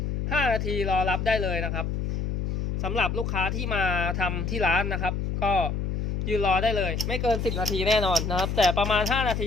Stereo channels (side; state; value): left; noise; hum, 2 dB below the sound